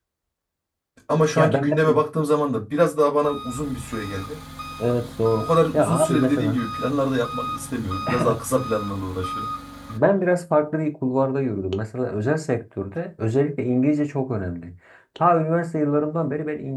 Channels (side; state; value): both; identical; correlation 1.00